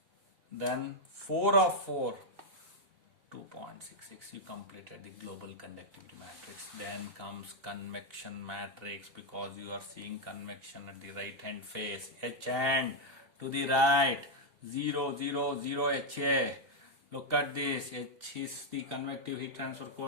Then 4 of 4, 2.66. You completed the global conductivity matrix. Then comes convection matrix, because you are seeing convection at the right hand face. H hand to the right, 0, 0, 0 HA. Look at this. H is the convective heat transfer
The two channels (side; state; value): left; late; 2.7 ms